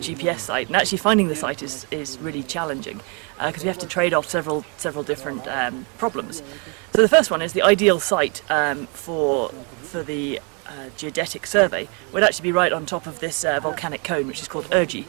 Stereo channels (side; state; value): left; quieter; 35.4 dB